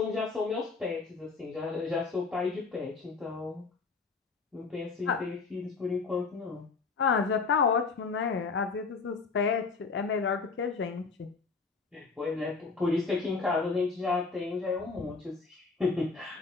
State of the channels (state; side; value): quieter; right; 4.5 dB